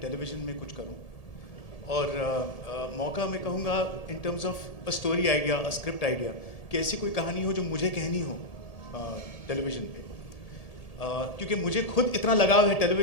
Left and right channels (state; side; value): late; right; 1.8 ms